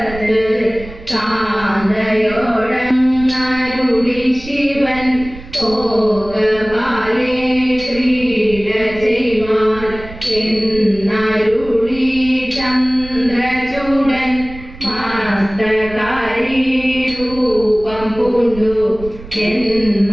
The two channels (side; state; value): right; noise; rumble, 15 dB below the sound